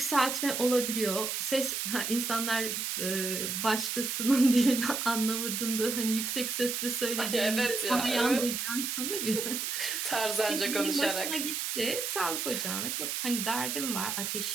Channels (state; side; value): noise; right; hiss, 2 dB below the sound